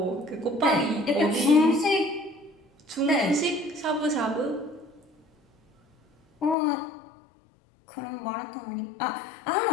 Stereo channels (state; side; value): drops out; right; at 6.6 s